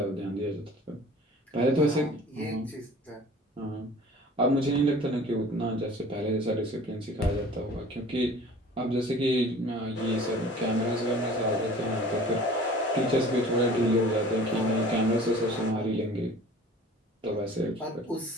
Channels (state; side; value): normal; both; correlation 0.46